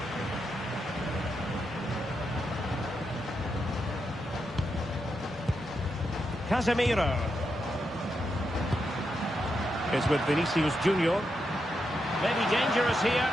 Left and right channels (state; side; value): normal; both; correlation 0.84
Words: Casemiro is with Vinicius Junior. Maybe dangerous here.